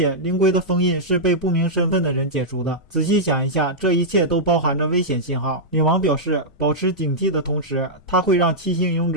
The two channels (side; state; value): both; normal; correlation -0.09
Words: 灵龟的封印是被不明身份的人解除的。仔细想一下，这一切都包含着危险信号。女王表示，保持警惕的同时，他会让7星勇